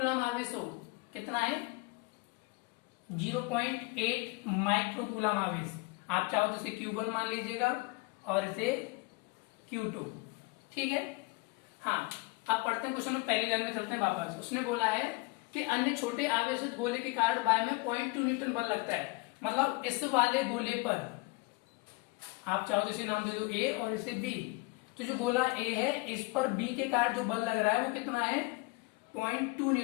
आवेश हो, कितना है 0.8 माइक्रोकूलम आवेश। आप चाहो तो इसे Q1 मान लीजिएगा और इसे Q2, ठीक है। हाँ, अब पढ़ते हैं क्वेश्चन में, पहली लाइन में चलते हैं वापस। उसने बोला है कि अन्य छोटे आवेशित गोले के कारण वायु में 0.2 न्यूटन बल लगता है। मतलब इस वाले गोले पर आप चाहो तो इसे नाम दे दो A और इसे B। तो जो गोला A है इस पर B के कारण जो बल लग रहा है वो कितना है 0.2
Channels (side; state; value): right; quieter; 25.3 dB